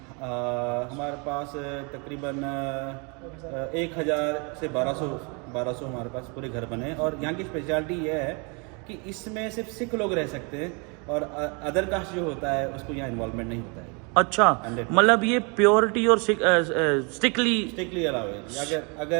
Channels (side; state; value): left; quieter; 32.9 dB